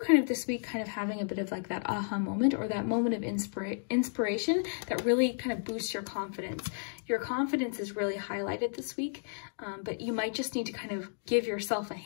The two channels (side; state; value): right; silent; digital silence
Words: kind of this week kind of having a bit of like that aha moment or that moment of inspiration that really kind of boosts your confidence. Your confidence is really highlighted this week, but you might just need to kind of give yourself a